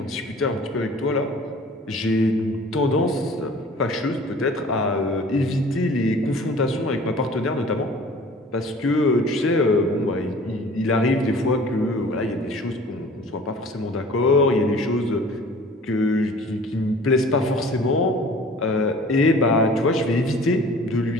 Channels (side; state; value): both; normal; correlation 0.47